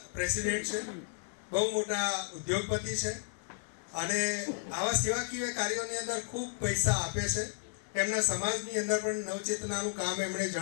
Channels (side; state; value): right; silent; digital silence